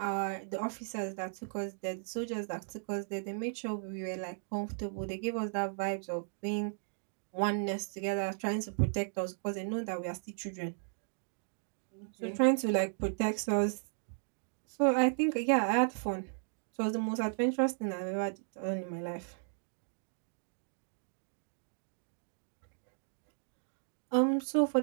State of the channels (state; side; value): silent; left; digital silence